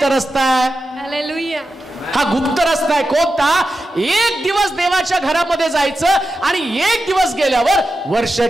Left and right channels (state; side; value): normal; both; correlation 0.91